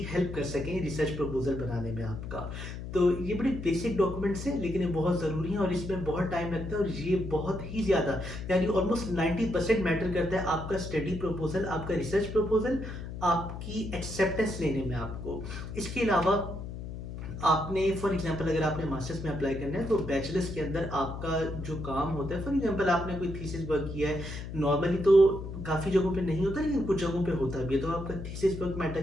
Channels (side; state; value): left; noise; hum, 8 dB below the sound